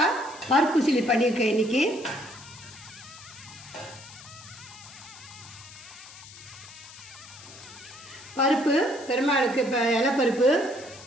பருப்பு சிலி பண்ணியிருக்கேன் இன்றைக்கி. பருப்பு பெருமாளுக்கு இப்போ இலைப்பருப்பு,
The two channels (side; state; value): left; noise; hiss, 17 dB below the sound